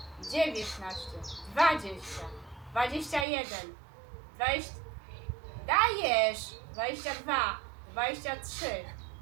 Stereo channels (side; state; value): left; drops out; at 3.2 s